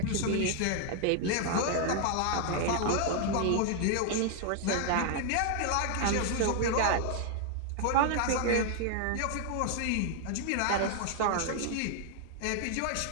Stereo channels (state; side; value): different; both; correlation 0.00